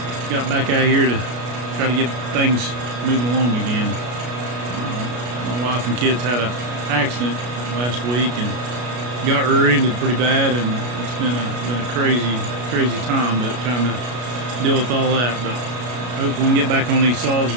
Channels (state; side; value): late; left; 33 ms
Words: back out here to try to get things moving along again. My wife and kids had an accident last week and got rear-ended pretty bad, and it's been a crazy time, but trying to deal with all that. But hopefully we can get back on these saws